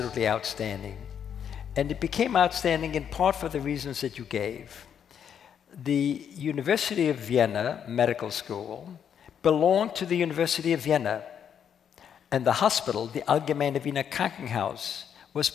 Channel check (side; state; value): right; quieter; 8.3 dB